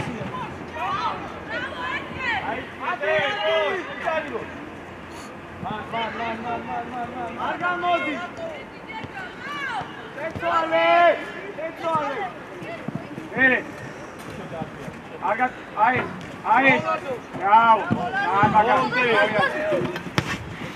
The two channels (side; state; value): both; identical; correlation 1.00